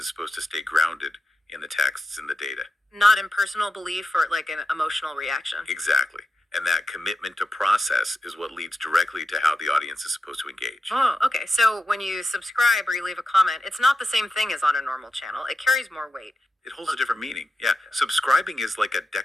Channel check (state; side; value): normal; both; correlation 0.89